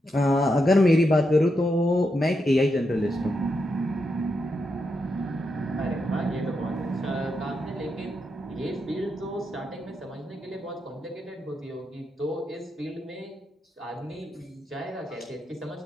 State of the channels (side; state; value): both; normal; correlation 0.84